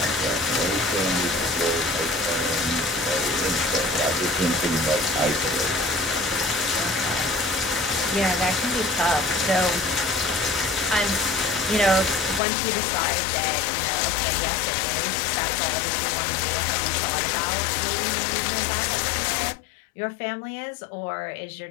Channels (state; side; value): drops out; right; at 12.4 s